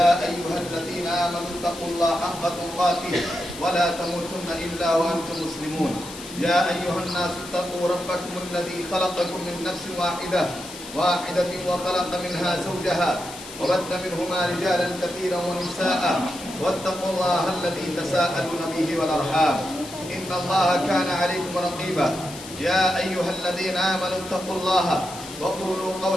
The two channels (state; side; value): noise; left; hiss, 14 dB below the sound